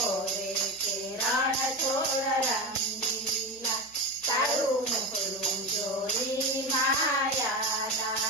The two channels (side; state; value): right; noise; hum, 30 dB below the sound